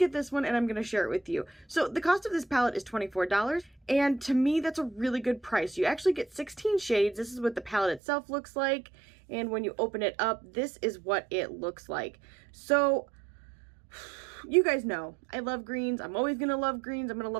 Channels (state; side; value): drops out; left; at 8.0 s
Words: this one and I'm going to share it with you. So the cost of this palette is $24, and to me that's a really good price. You actually get 16 shades. This is what the palette itself looks like, and when you open it up, this is what it looks like. So you guys know I love greens. I'm always gonna love greens. I'm gonna